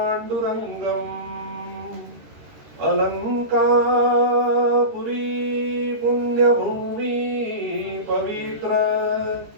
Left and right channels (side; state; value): left; late; 13 ms